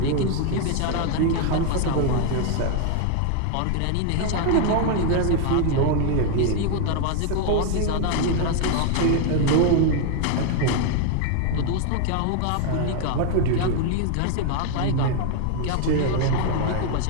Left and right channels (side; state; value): both; different; correlation 0.00